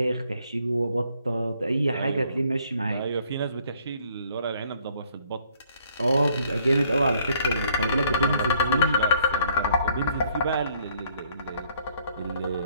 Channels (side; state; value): both; inverted; correlation -0.64